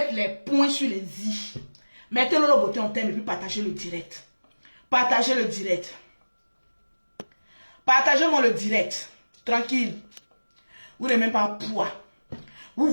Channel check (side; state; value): both; inverted; correlation -1.00